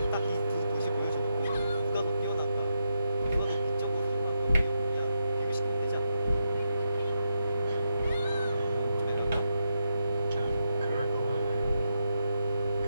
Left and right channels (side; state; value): both; inverted; correlation -0.84